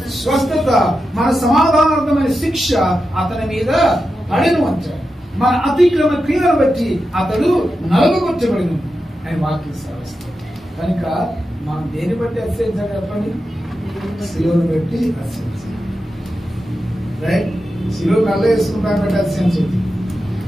స్వస్థత, మన సమాధానార్థమైన శిక్ష అతని మీద పడెను అంటాడు. మన అతిక్రమ క్రియలను బట్టి అతడు నలుగుకొట్టబడిను అని వాక్యం సాధిస్తాడు. కనుక మనం దేని బట్టి అతిశయించాలి చెప్పండి, సిలువను బట్టి అతిశయించాలి, రైట్? సిలువ నల్ల వేసుకుంటాను బట్టి అతిశయించదు,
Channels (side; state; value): both; normal; correlation 0.90